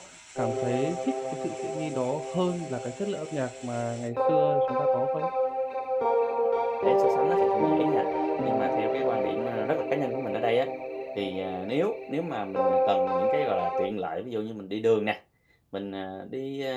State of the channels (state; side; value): identical; both; correlation 1.00